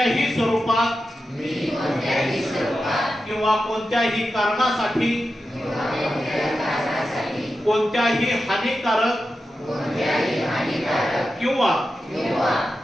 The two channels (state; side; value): normal; both; correlation 0.91